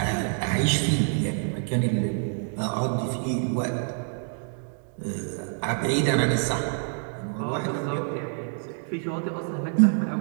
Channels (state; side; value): silent; left; digital silence